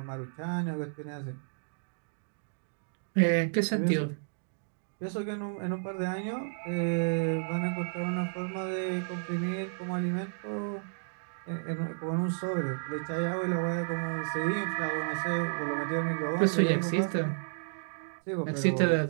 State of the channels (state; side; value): silent; left; digital silence